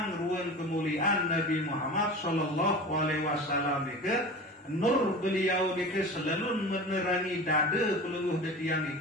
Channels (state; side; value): normal; both; correlation 0.34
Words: ruan kemuliaan Nabi Muhammad sallallahu alaihi wasallam niki. Nur beliau niki selalu menerangi dada pelungguh detian